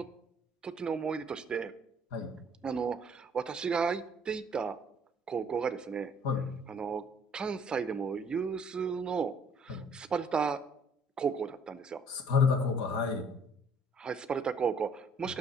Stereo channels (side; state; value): both; normal; correlation 0.60